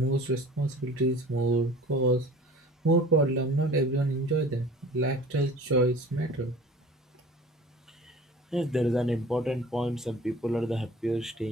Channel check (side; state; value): both; normal; correlation 0.44